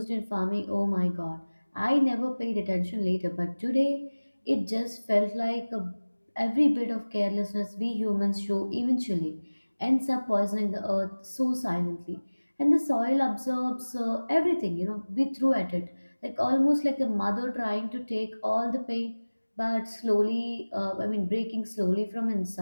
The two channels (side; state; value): both; inverted; correlation -1.00